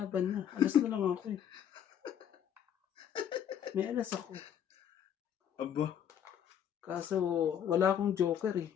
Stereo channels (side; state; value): right; quieter; 9.2 dB